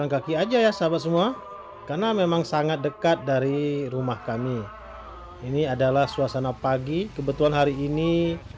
kaki aja ya sahabat semua, karena memang sangat dekat dari rumah kami. Ini adalah suasana pagi. Kebetulan hari ini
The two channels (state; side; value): identical; both; correlation 1.00